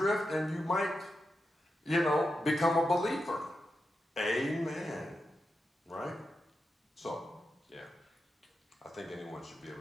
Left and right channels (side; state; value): both; normal; correlation 0.88